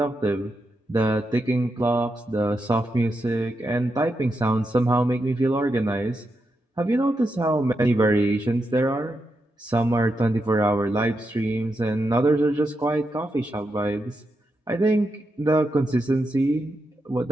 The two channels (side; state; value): both; normal; correlation 0.85